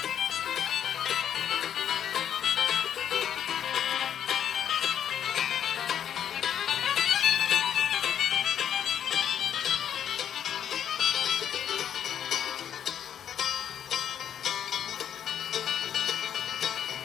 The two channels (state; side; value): quieter; right; 9.4 dB